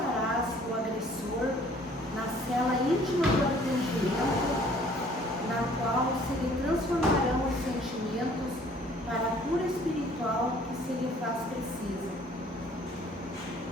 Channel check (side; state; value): both; normal; correlation 0.56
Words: o agressor na cela íntima do arrependimento, na qual se lhe transformarão os sentimentos para a cura espiritual que se lhe faz precisa.